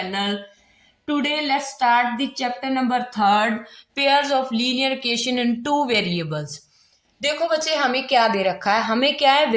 Today let's start the chapter number 3, pairs of linear equation in two variables. देखो बच्चे, हमें क्या दे रखा है, हमें क्या है,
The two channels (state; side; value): identical; both; correlation 1.00